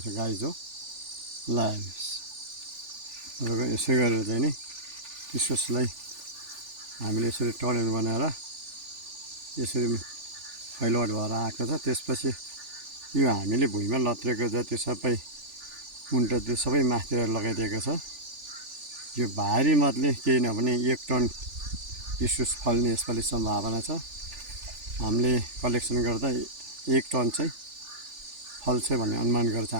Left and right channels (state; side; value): late; left; 3.4 ms